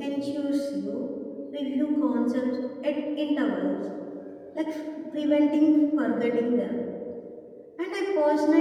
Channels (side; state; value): both; identical; correlation 1.00